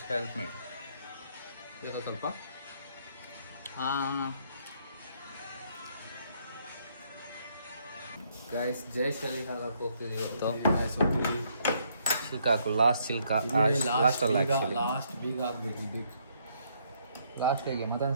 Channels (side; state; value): both; inverted; correlation -0.70